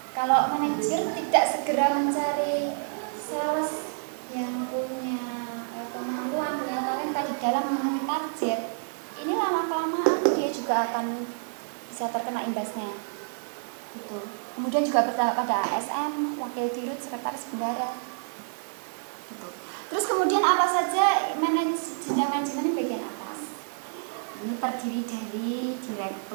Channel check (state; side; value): silent; left; digital silence